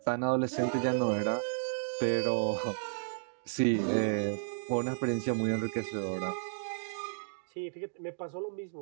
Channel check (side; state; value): left; silent; digital silence